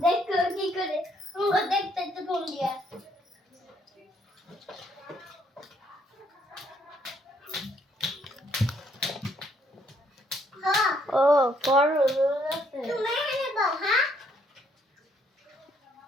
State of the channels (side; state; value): both; normal; correlation 0.69